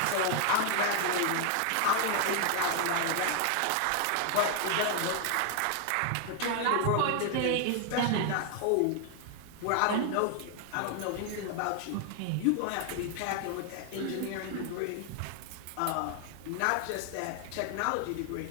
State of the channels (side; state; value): both; different; correlation 0.00